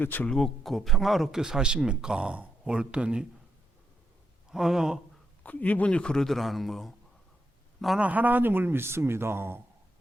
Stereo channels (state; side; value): normal; both; correlation 0.81